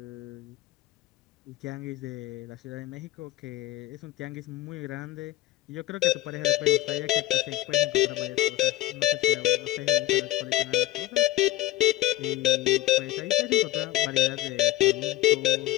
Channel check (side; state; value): right; quieter; 15.7 dB